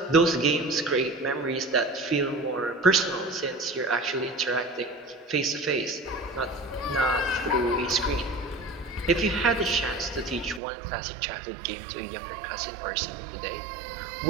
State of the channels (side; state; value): left; drops out; at 10.6 s